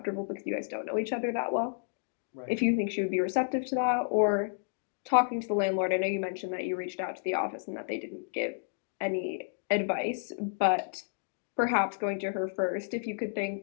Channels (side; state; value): right; silent; digital silence